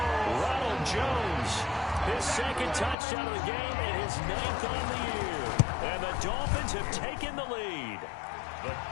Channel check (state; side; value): drops out; right; at 3.0 s